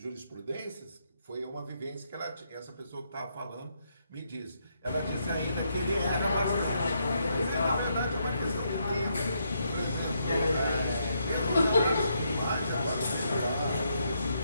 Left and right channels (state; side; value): inverted; both; correlation -0.77